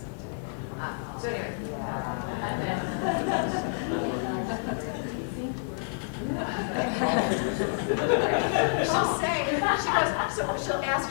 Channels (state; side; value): silent; right; 59 dB below the other